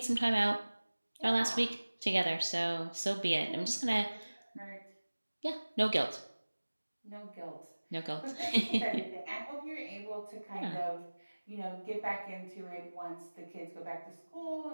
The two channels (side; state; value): both; inverted; correlation -1.00